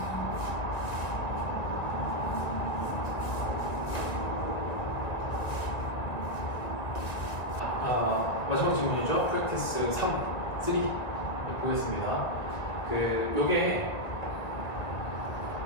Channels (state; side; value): late; right; 2.1 ms